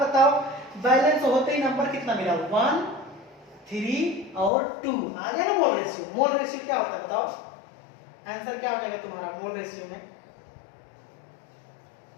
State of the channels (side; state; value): right; drops out; at 4.5 s